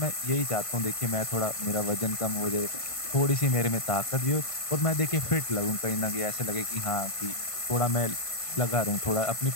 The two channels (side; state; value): right; late; 1.5 ms